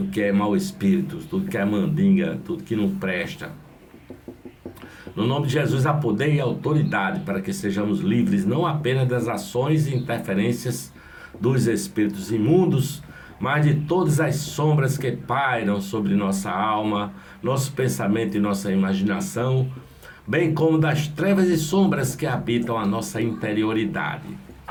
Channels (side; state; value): both; identical; correlation 1.00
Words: é mau espírito, tudo que é mandinga, tudo que não presta. No nome de Jesus há poder e autoridade para que sejamos livres não apenas das ações e interferências dos espíritos imundos, mas de todas as sombras que pairam sobre nossa alma, nosso pensamento e nossa imaginação, bem como das trevas e sombras que habitam a nossa interioridade.